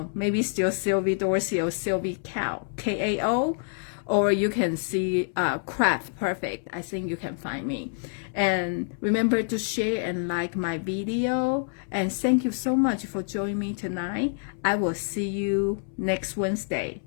maybe still Sylvie Dorsey or Sylvie Kao, Kao, or you can see Craft Perfect. I think you can find me. And remember to share and like my video. And thank you so much for joining me tonight. I will see you next Wednesday.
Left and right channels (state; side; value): silent; right; 60 dB below the other